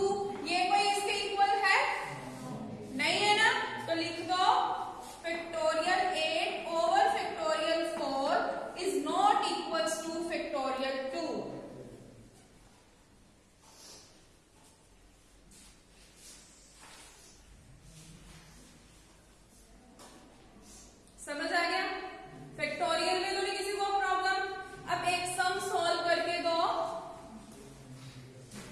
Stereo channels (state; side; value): identical; both; correlation 1.00